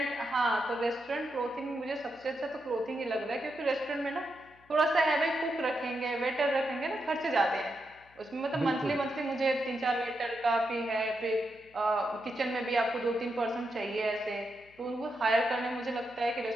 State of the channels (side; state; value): left; noise; hum, 29 dB below the sound